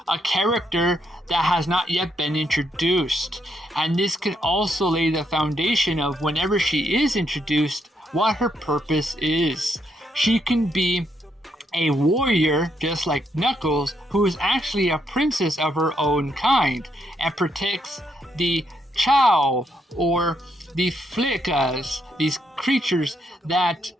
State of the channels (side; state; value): both; normal; correlation 0.76